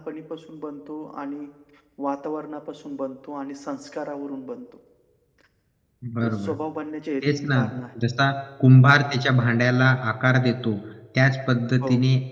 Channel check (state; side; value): identical; both; correlation 1.00